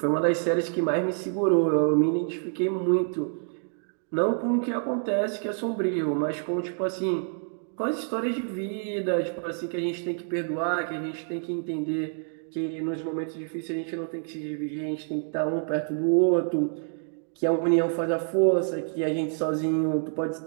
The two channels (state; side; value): silent; left; 60 dB below the other